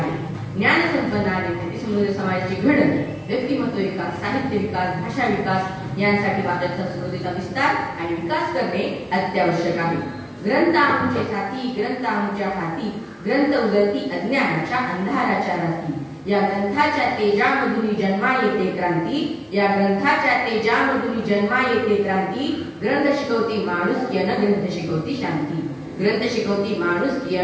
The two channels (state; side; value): identical; both; correlation 1.00